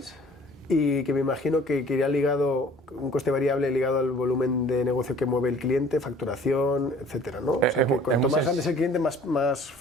y que me imagino que iría ligado, un coste variable ligado al volumen de negocio que mueve el cliente, facturación, etcétera, ¿no? O sea, que cuanto más grande es el cliente, más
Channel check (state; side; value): normal; both; correlation 0.52